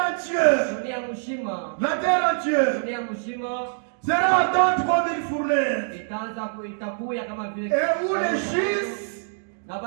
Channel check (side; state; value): left; silent; digital silence